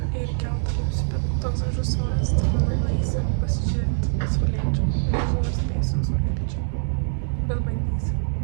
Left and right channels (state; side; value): silent; left; digital silence